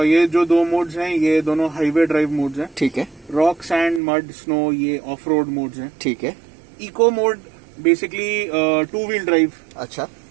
ये जो 2 मोड्स हैं ये दोनों हाईवे ड्राइव मोड्स हैं। ठीक है। रॉक, सैंड, मड, स्नो ये ऑफ रोड मोड्स हैं। ठीक है। Eco mode basically 2 wheel drive अच्छा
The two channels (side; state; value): left; drops out; at 4.0 s